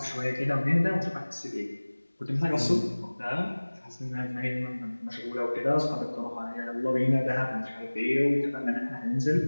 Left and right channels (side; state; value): both; inverted; correlation -1.00